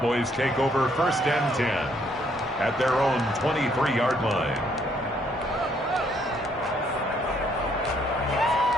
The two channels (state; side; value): normal; both; correlation 0.69